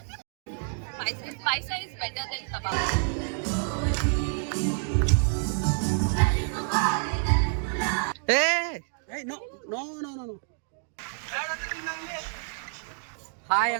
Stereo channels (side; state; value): left; silent; 59 dB below the other